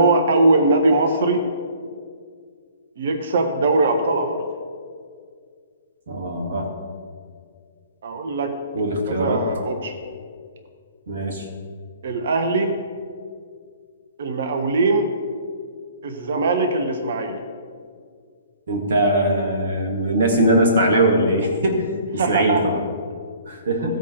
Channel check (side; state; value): both; inverted; correlation -0.55